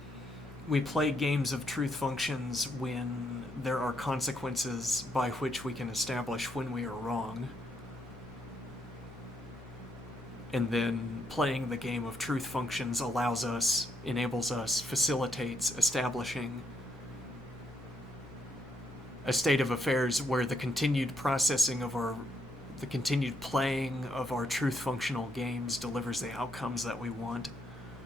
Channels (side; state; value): both; normal; correlation 0.76